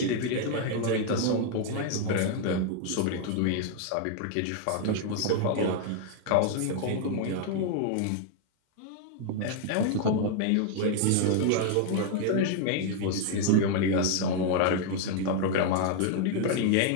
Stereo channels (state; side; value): different; both; correlation 0.00